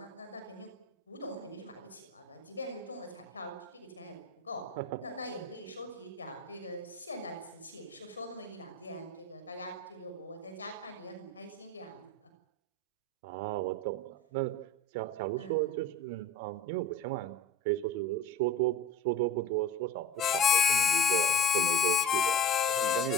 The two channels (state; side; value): normal; both; correlation 0.36